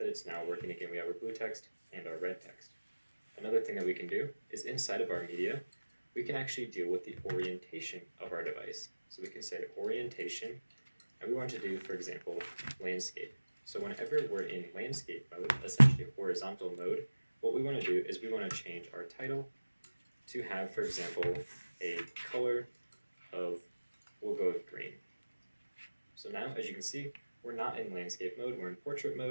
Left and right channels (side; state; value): both; inverted; correlation -1.00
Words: it's now working again. We have our blue text and our red text. Another thing that we can do is inside of our media, we can actually deal with the orientation of our device. So we can say orientation, and we want to do, for example, landscape. So whenever we're in landscape mode, essentially horizontal mode, what we want to do is we want to change our title to have, for example, a color of, we'll go with green. So now, as you can see, we're not in landscape mode, we're in portrait